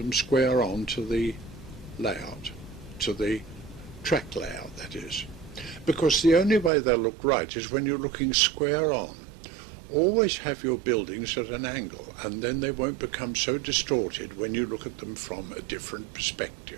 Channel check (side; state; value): left; drops out; at 6.7 s